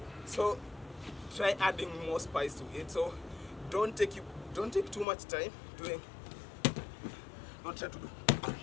So try adding more spice to it. So don't take too much time doing. Don't try to do.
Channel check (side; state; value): right; drops out; at 5.1 s